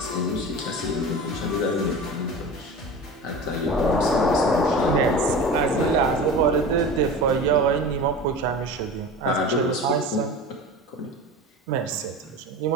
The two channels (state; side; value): normal; both; correlation 0.33